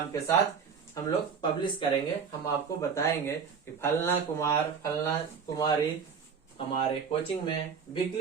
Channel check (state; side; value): quieter; left; 6.3 dB